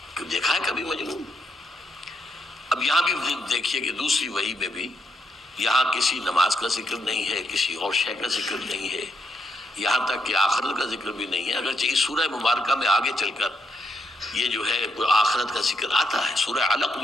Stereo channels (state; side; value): normal; both; correlation 0.78